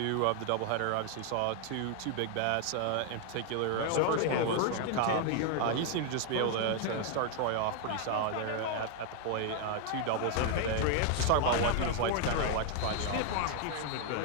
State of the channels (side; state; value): both; different; correlation 0.00